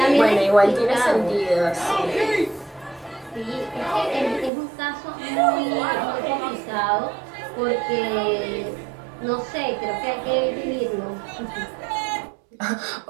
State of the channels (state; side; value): drops out; left; at 4.5 s